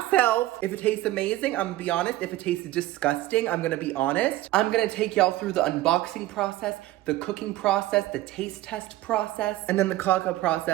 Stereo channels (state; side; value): quieter; left; 16.1 dB